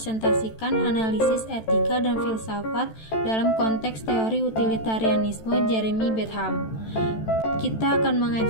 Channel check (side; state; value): right; late; 14 ms